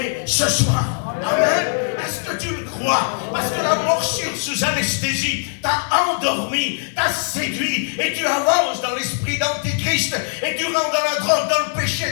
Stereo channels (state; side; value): silent; right; digital silence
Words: ce soir. Amen. Est-ce que tu le crois? Parce que la morsure sous anesthésie t'a endormi, t'a séduit, et tu avances dans l'esprit d'Antichrist, et tu rentres dans la drogue, dans le péché,